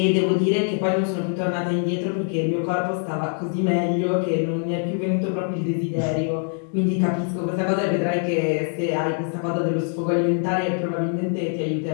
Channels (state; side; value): silent; right; 56 dB below the other